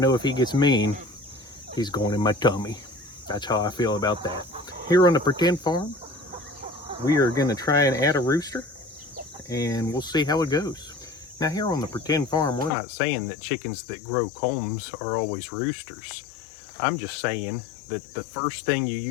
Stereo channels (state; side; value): drops out; right; at 12.7 s